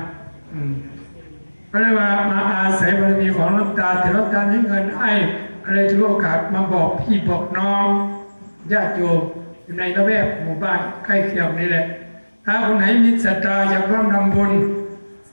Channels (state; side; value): inverted; both; correlation -1.00